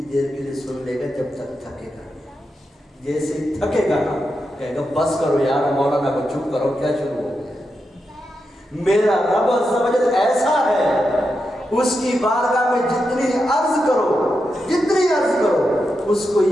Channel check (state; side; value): normal; both; correlation 0.87